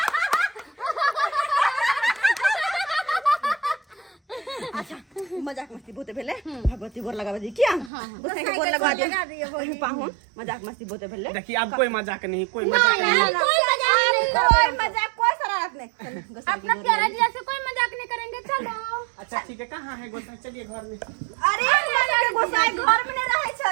अच्छा मजाक मस्ती बोते भेले भगवती गोर लगावे दी क्या गोसाई के गोर लगा दिए पाहुन मजाक मस्ती बोते भेले। देखिए अब कोई मजाक नहीं कोई मजाक नहीं कोई शरारत नहीं अपना प्यारा जीजा से कोई मजाक नहीं करेंगे चलो। अच्छा ठीक है कहाँ है गोसाई चलिए घर में। अरे हमरा के गोसाई घर में नहीं रहे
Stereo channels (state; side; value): drops out; left; at 7.9 s